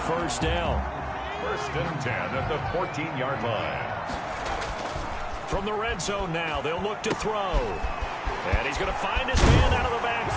first down. 1st and 10 at the 14-yard line. From the red zone now, they'll look to throw. And he's going to find his man out of the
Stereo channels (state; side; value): identical; both; correlation 1.00